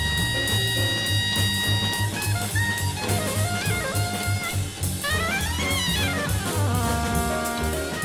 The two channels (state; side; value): identical; both; correlation 1.00